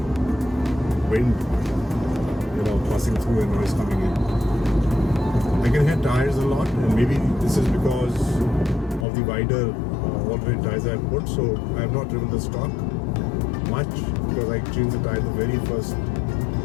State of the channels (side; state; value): right; drops out; at 9.1 s